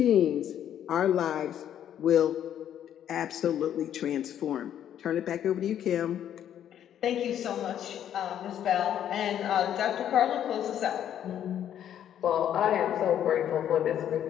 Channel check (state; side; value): quieter; right; 10.2 dB